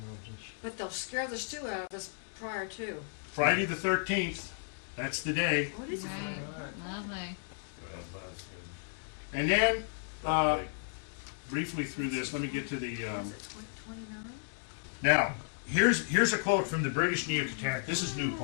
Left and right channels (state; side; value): silent; right; digital silence